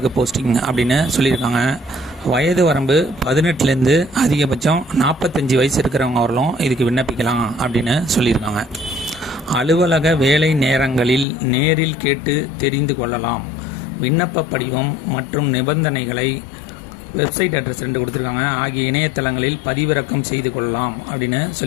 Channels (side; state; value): right; drops out; at 11.2 s